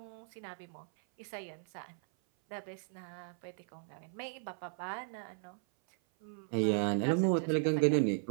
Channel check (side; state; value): left; silent; 54 dB below the other